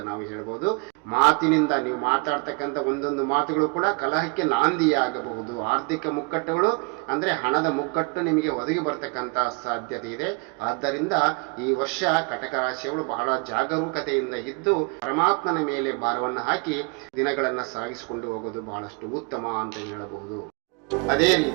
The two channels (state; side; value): quieter; left; 31.1 dB